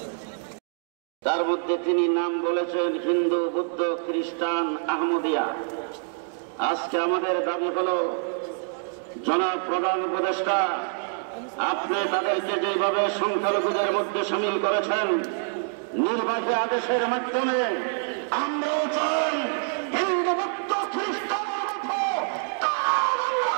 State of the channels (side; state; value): left; silent; 61 dB below the other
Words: তার মধ্যে তিনি নাম বলেছেন হিন্দু, বৌদ্ধ, খ্রিস্টান, আহমদিয়া। আজকে আমাদের দাবি হলো জনাব প্রধান উপদেষ্টা, আপনি তাদেরকে যেভাবে সংখ্যালঘুদের মধ্যে সামিল করেছেন নির্বাচনী আদেশের মাধ্যমে, আমরাও চাই হিন্দু, বৌদ্ধ, খ্রিস্টানের মতো তারা